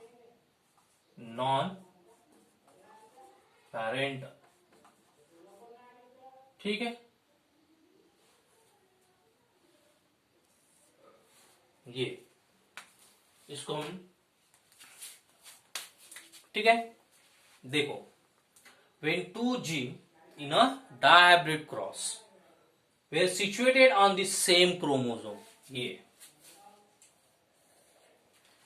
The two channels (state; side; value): identical; both; correlation 1.00